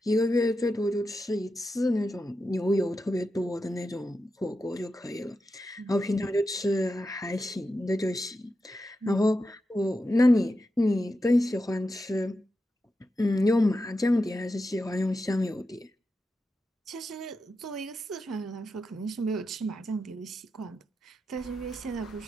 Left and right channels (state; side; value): normal; both; correlation 0.89